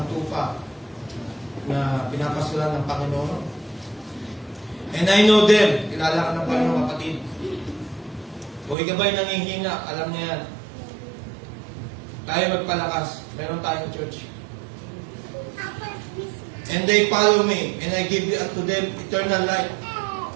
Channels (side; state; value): left; drops out; at 8.8 s